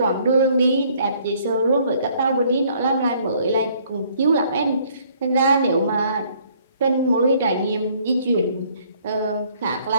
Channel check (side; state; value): both; inverted; correlation -0.62